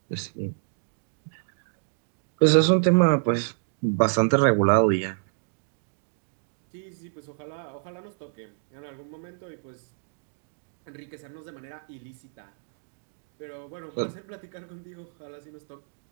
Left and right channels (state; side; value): silent; left; digital silence